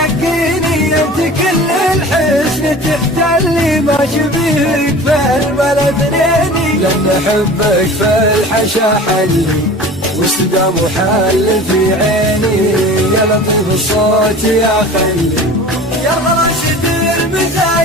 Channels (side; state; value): both; normal; correlation 0.40